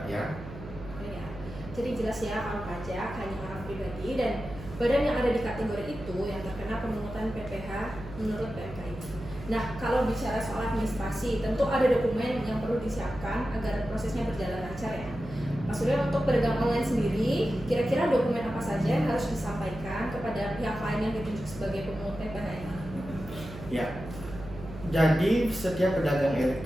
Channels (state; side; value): noise; right; hum, 13 dB below the sound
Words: ya. Jadi jelas ya, kalau pajak hanya orang pribadi dan badan yang ada di kategori itu yang terkena pemungutan PPh menurut PMK ini. Nah, kalau bicara soal administrasi, tentu ada dokumen yang perlu disiapkan agar prosesnya berjalan lancar ya. Mas Surya, untuk pedagang online sendiri, kira-kira dokumen apa saja yang harus disampaikan kepada pihak lain yang ditunjuk sebagai pemungut PPh ini? Ya, jadi setiap pedagang